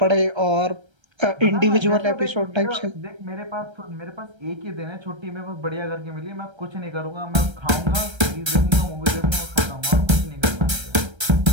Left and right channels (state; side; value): late; left; 1.3 ms